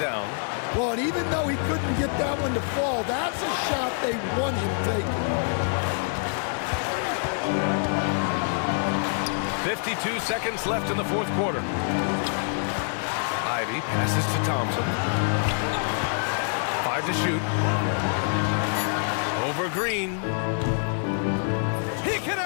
Well, and even though he couldn't get that one to fall, that's a shot they want him taking. 52 seconds left in the fourth quarter. Ivy passes to Thompson. 5 to shoot. for Green. He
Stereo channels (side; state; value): right; silent; 61 dB below the other